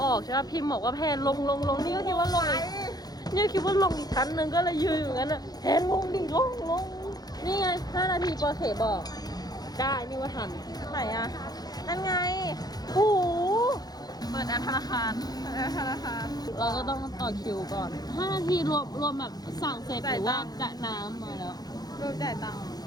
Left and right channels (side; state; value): right; late; 0.19 ms